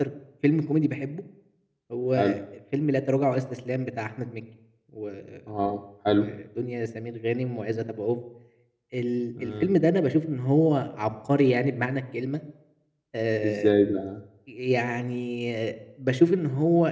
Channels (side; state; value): both; identical; correlation 1.00